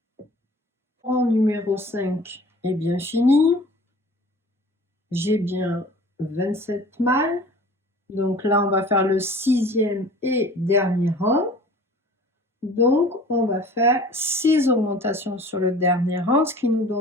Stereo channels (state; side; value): normal; both; correlation 0.44